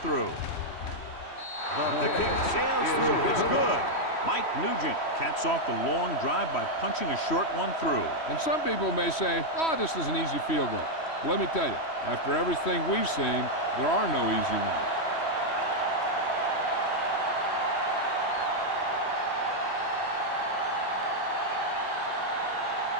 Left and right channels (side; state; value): right; late; 3.1 ms